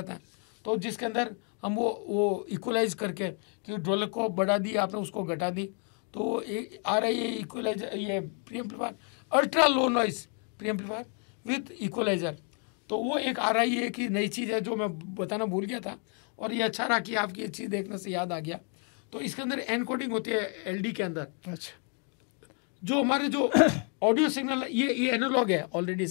हैं, तो जिसके अंदर हम वो इक्वलाइज करके कि ढोलक को बढ़ा दी आपने, उसको घटा दी, तो आ रहा है ये इक्वलाइजर, ये pre amplifier ultra low noise pre amplifier with equaliser. तो वो एक आ रही है कि नई चीज़ है जो मैं बताना भूल गया था, और ये अच्छा रहा कि आपकी ये चीज़ देखने से याद आ गया। तो इसके अंदर एनकोडिंग होती है एलडी के अंदर। अच्छा, जो हमारे जो ऑडियो सिग्नल ये एनालॉग है ऑलरेडी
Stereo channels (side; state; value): right; quieter; 37.0 dB